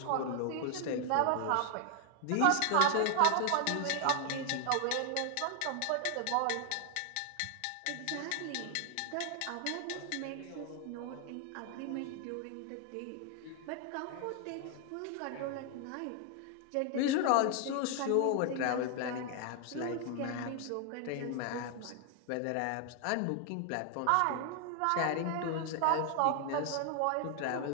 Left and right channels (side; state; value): both; different; correlation 0.00